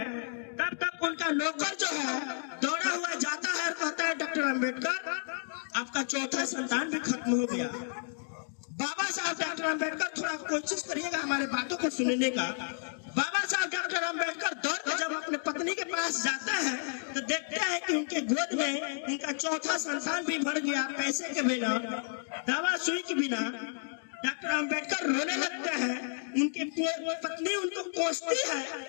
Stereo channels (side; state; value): right; silent; digital silence